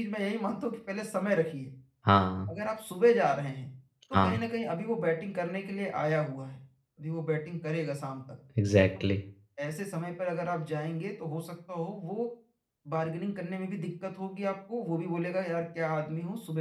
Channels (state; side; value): identical; both; correlation 1.00